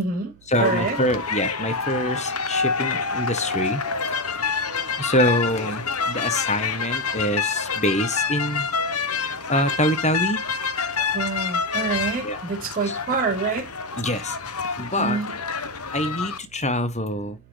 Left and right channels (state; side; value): noise; right; hum, 27 dB below the sound